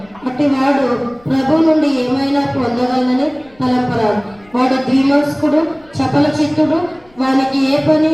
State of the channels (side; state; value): left; noise; rumble, 29 dB below the sound